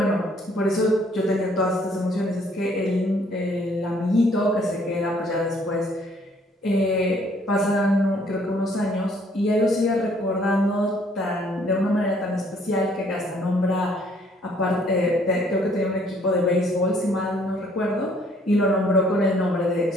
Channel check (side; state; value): both; normal; correlation 0.63